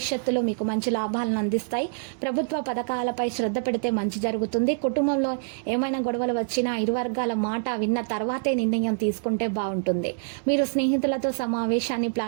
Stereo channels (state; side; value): silent; left; 59 dB below the other